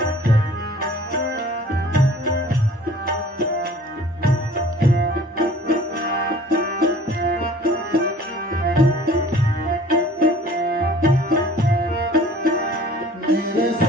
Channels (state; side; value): normal; both; correlation 0.49